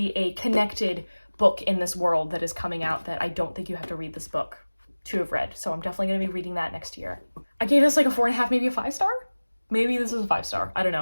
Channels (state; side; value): inverted; both; correlation -1.00